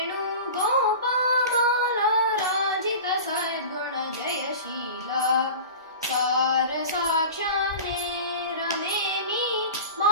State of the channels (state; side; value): inverted; both; correlation -0.34